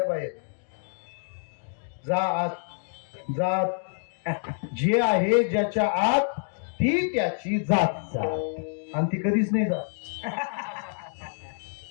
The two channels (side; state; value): right; silent; digital silence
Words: बाहेर जात जे आहे ज्याच्या आत ती त्याची जात आणि ती कधीच नाही जात.